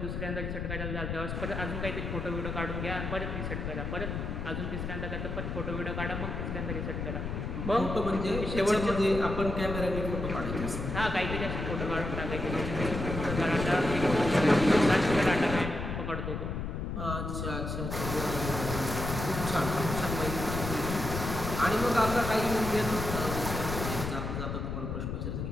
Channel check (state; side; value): noise; left; rumble, 4 dB below the sound